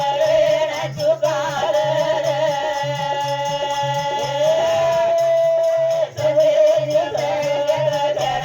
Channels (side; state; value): both; identical; correlation 1.00